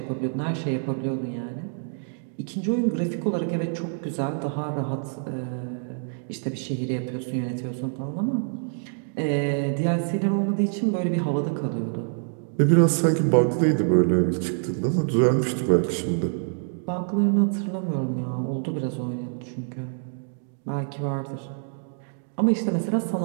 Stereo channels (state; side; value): silent; left; digital silence